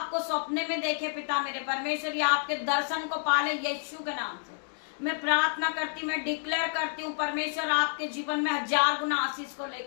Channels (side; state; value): right; silent; digital silence